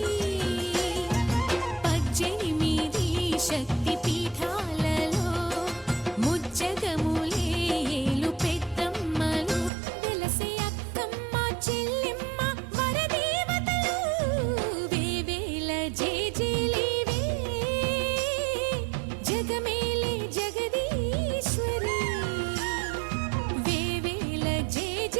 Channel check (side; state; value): left; drops out; at 9.7 s